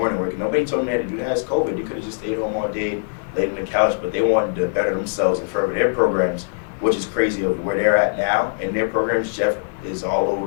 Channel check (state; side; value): silent; right; digital silence